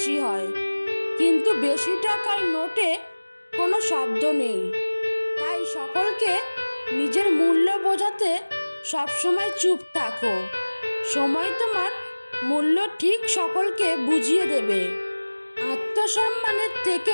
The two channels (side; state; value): both; inverted; correlation -1.00